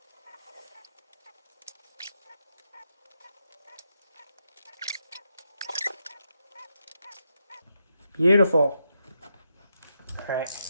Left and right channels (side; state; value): both; inverted; correlation -0.83